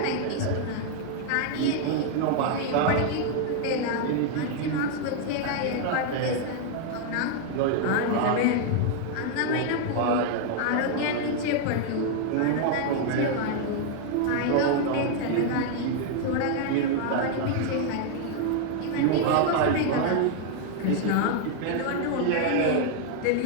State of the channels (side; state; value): both; different; correlation 0.00